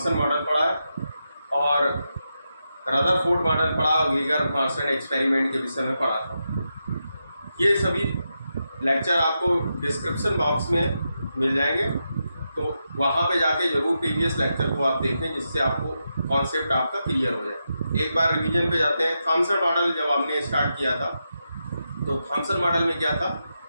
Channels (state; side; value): inverted; both; correlation -0.87